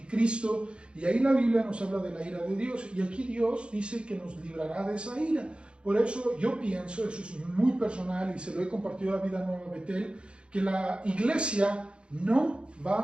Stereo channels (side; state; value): left; late; 0.056 ms